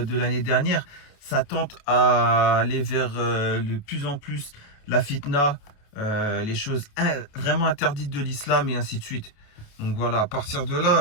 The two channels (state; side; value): late; right; 28 ms